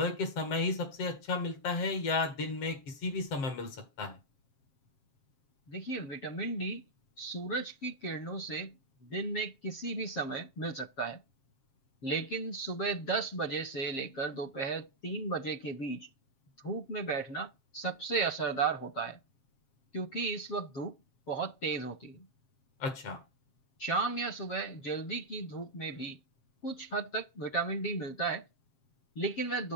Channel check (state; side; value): late; right; 7.5 ms